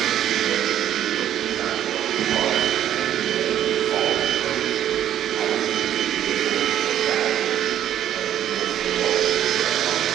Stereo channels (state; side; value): quieter; left; 11.0 dB